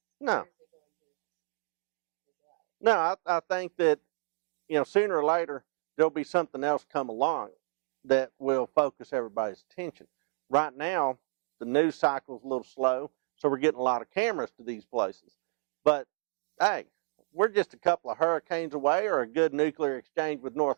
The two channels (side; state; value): left; silent; 58 dB below the other